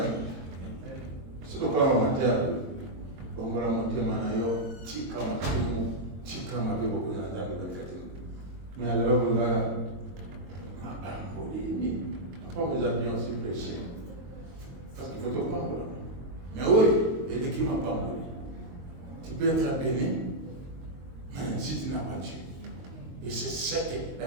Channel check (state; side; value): late; left; 22 ms